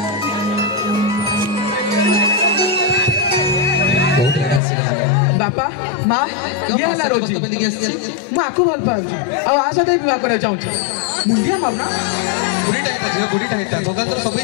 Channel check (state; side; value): drops out; right; at 4.6 s